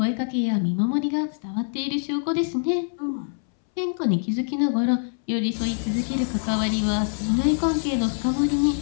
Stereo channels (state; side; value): silent; right; 62 dB below the other